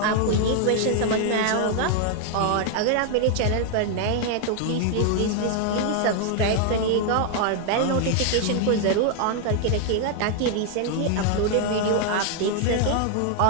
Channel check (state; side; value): different; both; correlation 0.00